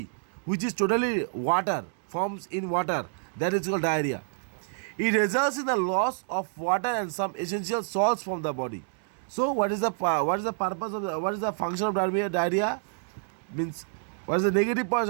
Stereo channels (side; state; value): left; silent; digital silence